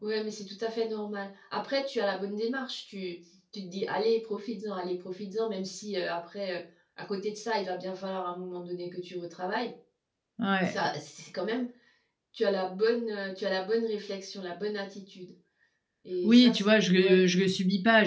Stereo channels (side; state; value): both; identical; correlation 1.00